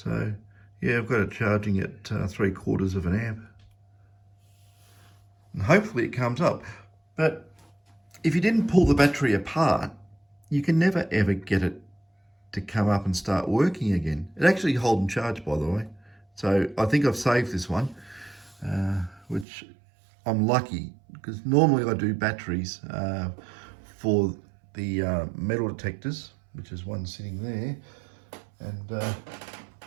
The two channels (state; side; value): drops out; left; at 19.5 s